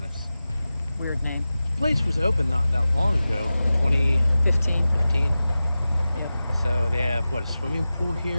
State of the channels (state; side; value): inverted; both; correlation -0.95